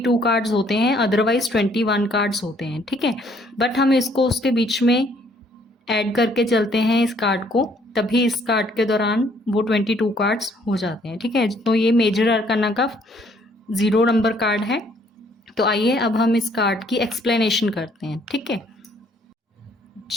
कार्ड्स होते हैं, अदरवाइज 21 कार्ड्स होते हैं। ठीक है, बट हम इसको उसके बीच में ऐड करके चलते हैं इस कार्ड को, तभी इस कार्ड के दौरान वो 22 कार्ड्स हो जाते हैं। ठीक है, तो ये मेजर अरकाना का 0 नंबर कार्ड है। तो आइए अब हम इस कार्ड की एक्सप्लेनेशन करते हैं। ठीक है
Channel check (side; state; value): both; normal; correlation 0.64